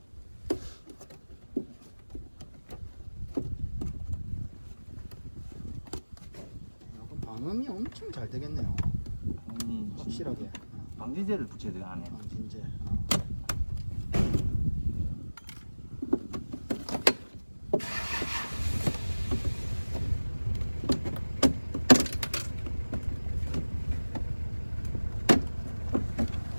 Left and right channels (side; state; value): both; inverted; correlation -1.00